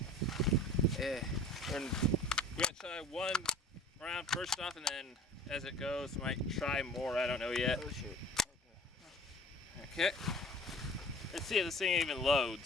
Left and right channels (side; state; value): both; normal; correlation 0.45